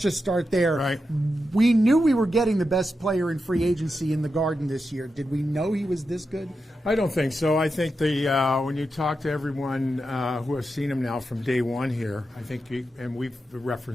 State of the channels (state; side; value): normal; both; correlation 0.88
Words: start there. Right. We knew we were getting the best player in free agency in the Garden this year. Did we know he was this good? I don't think so. I think when you talk to everyone who has seen him now from day one here, I think, and we've